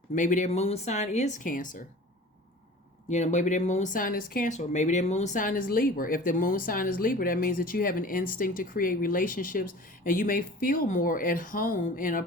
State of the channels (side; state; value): both; normal; correlation 0.41